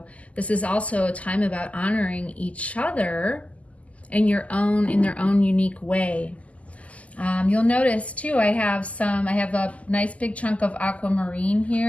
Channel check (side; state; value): right; late; 0.069 ms